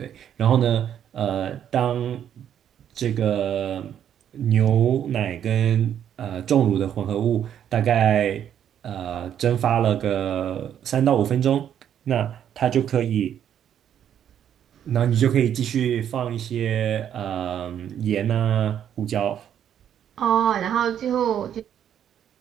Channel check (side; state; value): left; quieter; 9.7 dB